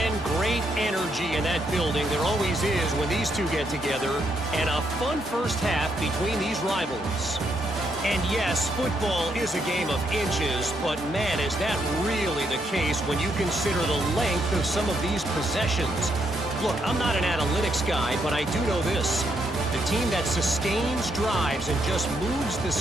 great energy in that building. There always is when these two get together. And a fun first half between these rivals. And yes, football is a game of inches, but man, is that really the case when you consider the length of some of these possessions. Look, I'm not an analytics guy, but I do know this. The team that sustains drives and just moves the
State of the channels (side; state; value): both; normal; correlation 0.76